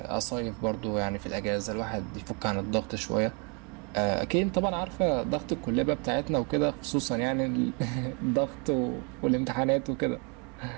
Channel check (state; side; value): quieter; left; 35.0 dB